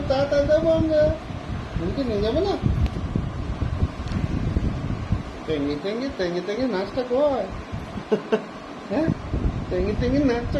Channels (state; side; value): identical; both; correlation 1.00